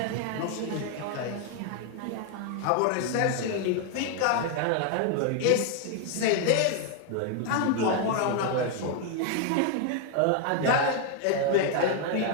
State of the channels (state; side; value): different; both; correlation 0.00